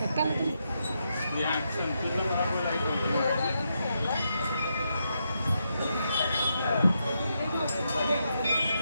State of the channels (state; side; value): inverted; both; correlation -0.82